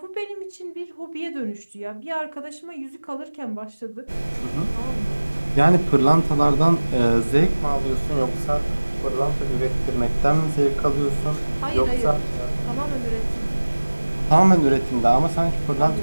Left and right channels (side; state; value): both; inverted; correlation -1.00